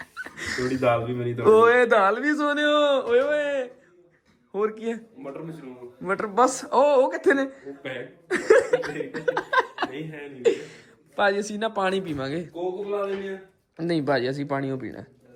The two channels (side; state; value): both; identical; correlation 1.00